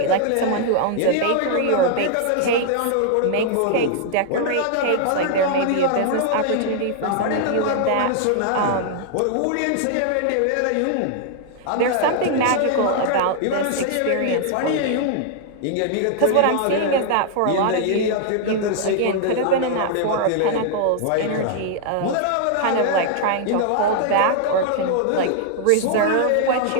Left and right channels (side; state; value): both; different; correlation -0.01